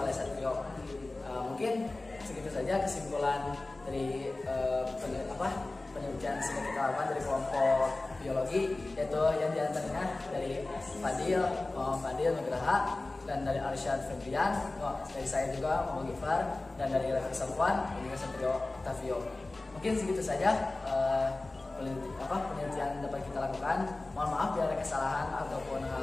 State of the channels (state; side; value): quieter; right; 3.0 dB